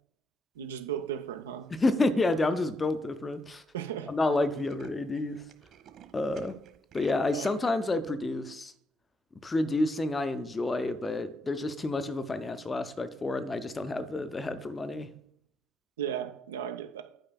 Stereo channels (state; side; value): normal; both; correlation 0.79